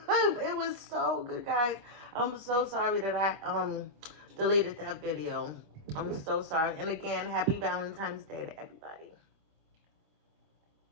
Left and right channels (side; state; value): left; late; 25 ms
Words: It was so good, guys. I'm so sorry that I deleted that video. I'm so sorry. And again, happy Valentine's Day to everybody.